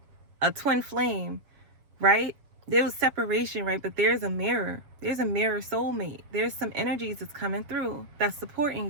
a twin flame, right? There was separation, right? But there's a mirror. There's a mirror soulmate. There's some energies that's coming through that's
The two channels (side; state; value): left; late; 7.5 ms